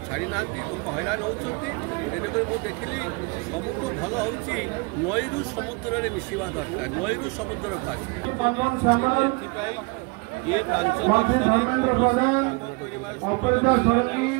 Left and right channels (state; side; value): quieter; left; 29.3 dB